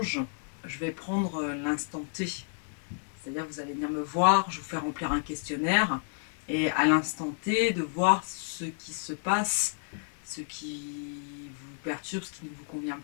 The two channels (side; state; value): right; silent; 57 dB below the other